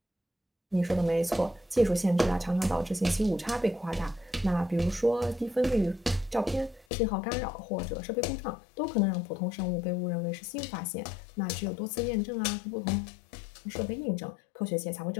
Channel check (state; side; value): drops out; right; at 6.9 s